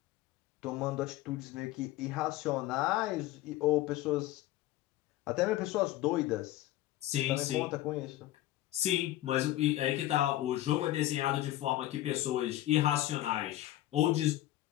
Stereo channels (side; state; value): right; quieter; 15.1 dB